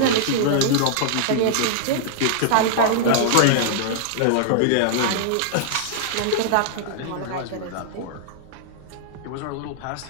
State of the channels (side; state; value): both; different; correlation -0.01